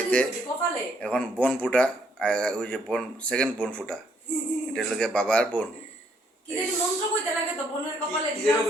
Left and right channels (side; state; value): both; normal; correlation 0.69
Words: এখন বোন ফুটা, ওই যে বোন সেকেন্ড বোন ফুটা, এটা লোকে বাবার বোন।